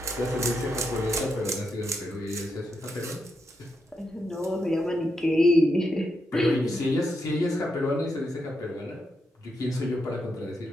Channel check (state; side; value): normal; both; correlation 0.83